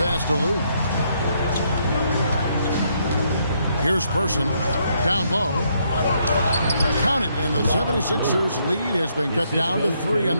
to Lou. Here's Person, down low. Count it, and the 76ers lead has been cut down to 3 on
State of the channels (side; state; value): both; inverted; correlation -0.73